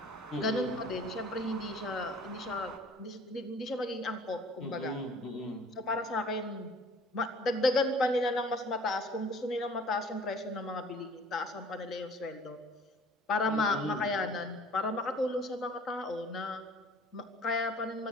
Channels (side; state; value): both; normal; correlation 0.51